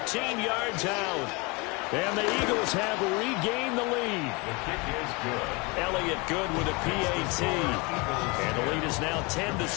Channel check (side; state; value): right; quieter; 27.6 dB